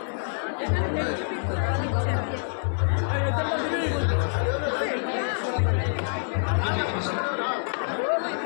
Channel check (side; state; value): right; silent; digital silence